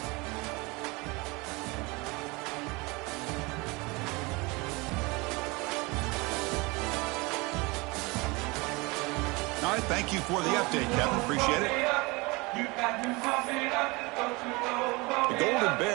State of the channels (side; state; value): left; quieter; 25.4 dB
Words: All right, thank you for the update, Kevin. Appreciate it. The Golden